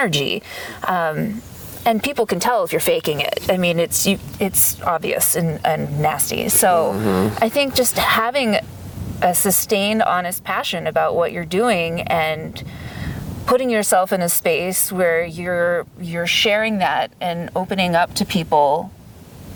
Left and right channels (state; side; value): identical; both; correlation 1.00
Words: And people can tell if you're faking it. I mean, it's obvious and nasty. So I think just having a sustained, honest passion about what you're doing and putting yourself in a space where you're sharing that and opening up to people